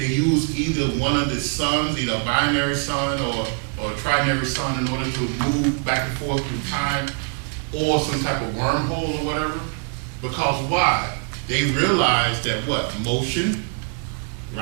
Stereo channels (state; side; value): quieter; left; 40.0 dB